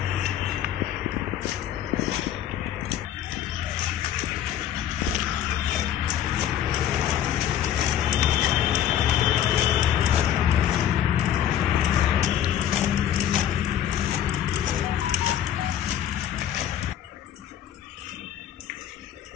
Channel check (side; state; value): right; quieter; 10.6 dB